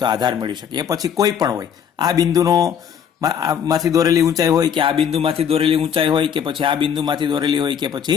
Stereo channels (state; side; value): quieter; right; 8.1 dB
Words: તો આધાર મેળવી શકીએ. એ પછી કોઈ પણ હોય, આ બિંદુનો માંથી દોરેલી ઊંચાઈ હોય કે આ બિંદુમાંથી દોરેલી ઊંચાઈ હોય કે પછી આ બિંદુમાંથી દોરેલી હોય કે